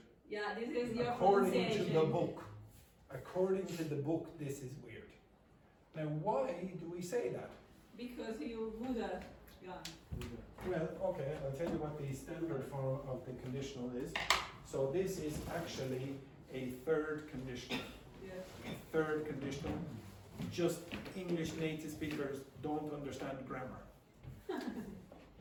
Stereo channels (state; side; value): identical; both; correlation 1.00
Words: yeah, this is your According to pronunciation. the book. According to the book, this is weird. Now, why do we say that? Because you Buddha. Yeah. Well, okay, I'll tell you what the standard form of the conditional is. So this is actually a third conditional. Yes. Third conditional. Just English native speakers don't understand grammar.